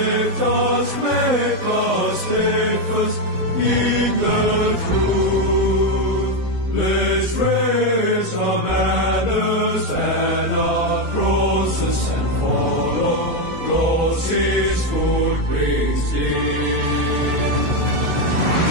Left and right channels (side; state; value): left; late; 16 ms